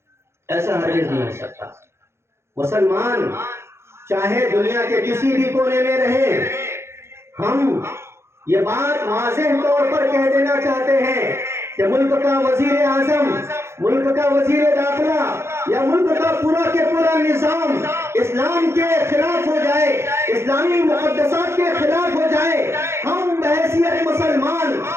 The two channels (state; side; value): late; left; 0.13 ms